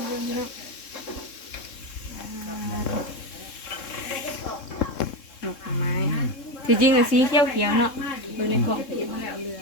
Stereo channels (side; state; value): right; late; 3.7 ms